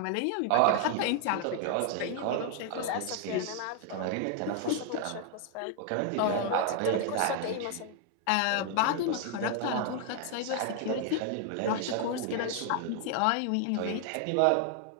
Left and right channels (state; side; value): different; both; correlation 0.00